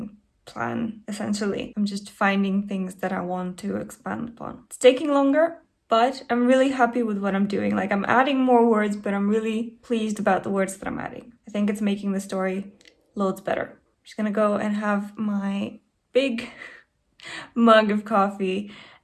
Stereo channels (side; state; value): both; identical; correlation 1.00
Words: plan, essentially. I'm just finding things that I want to expand upon. It's taking longer, but I'm really happy with what I'm doing. Like, I'm adding more words, but I'm really pleased about the words that I'm adding. I think it's making the story loads better. I'm just gonna go and have my big mug of coffee